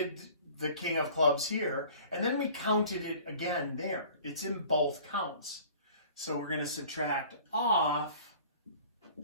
the king of clubs here, and then we counted it again there. It's in both counts. So we're going to subtract off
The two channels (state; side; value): inverted; both; correlation -0.48